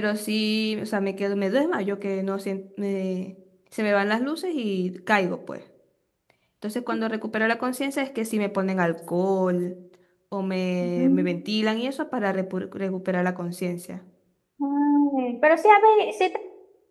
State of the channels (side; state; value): both; identical; correlation 1.00